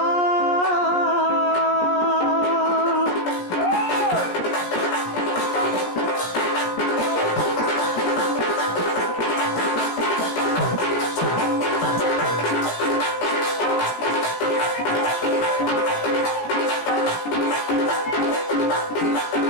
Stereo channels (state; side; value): late; right; 17 ms